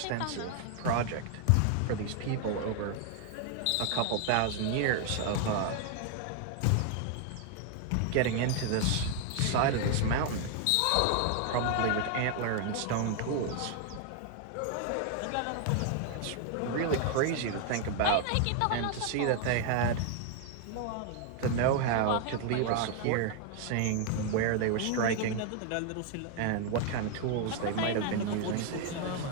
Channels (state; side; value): different; both; correlation 0.00